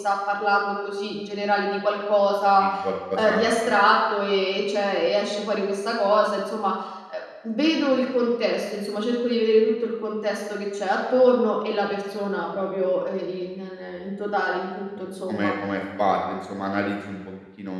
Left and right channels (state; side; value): identical; both; correlation 1.00